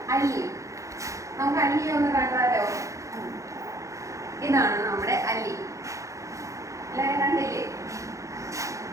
അല്ലി. നമുക്ക് അല്ലിയെ ഒന്ന് കണ്ടാലോ? ഇതാണ് നമ്മുടെ അല്ലി. എല്ലാവരും കണ്ടില്ലേ?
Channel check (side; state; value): left; late; 0.15 ms